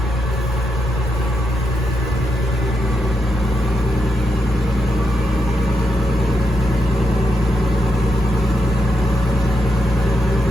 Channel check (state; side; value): normal; both; correlation 0.82